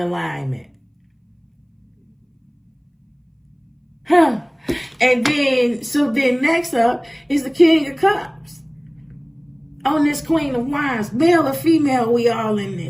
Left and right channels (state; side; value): identical; both; correlation 1.00